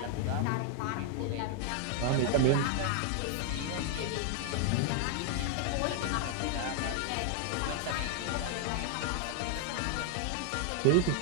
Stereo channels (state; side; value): different; both; correlation 0.00